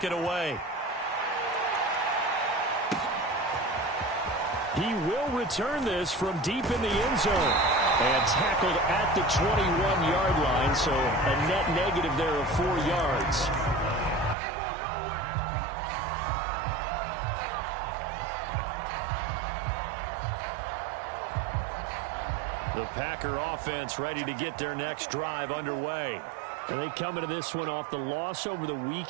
it away. He will return this from deep in the end zone. And tackled at the 21-yard line, so a net negative there of 4 yards. The Packer offense ready to get their next drive underway. And they come into this one off the loss over the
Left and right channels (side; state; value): left; drops out; at 14.4 s